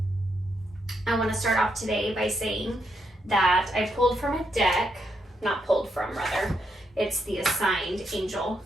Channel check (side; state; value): both; normal; correlation 0.79